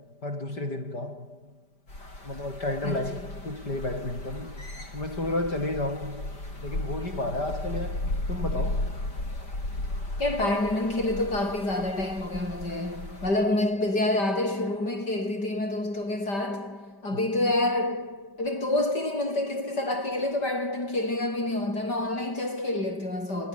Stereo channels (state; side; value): late; right; 5.1 ms